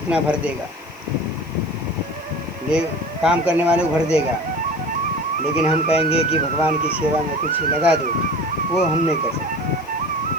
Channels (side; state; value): left; noise; hiss, 27 dB below the sound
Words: भर देगा, ले काम करने वाले को भर देगा। लेकिन हम कहेंगे कि भगवान की सेवा में कुछ लगा दो, वो हम नहीं कर